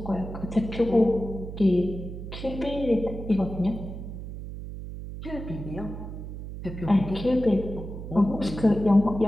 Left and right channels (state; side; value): noise; right; hum, 9 dB below the sound